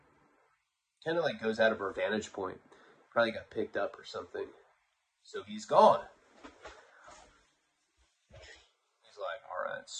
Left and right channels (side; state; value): both; identical; correlation 1.00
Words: kind of like goes out of our vantage point. Probably got picked up or something. So he's gone. He's like, all right,